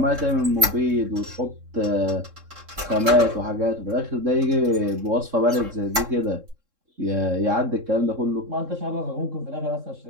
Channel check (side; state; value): left; late; 3.7 ms